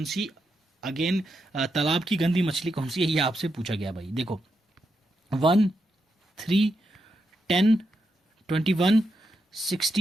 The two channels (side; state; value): both; normal; correlation 0.84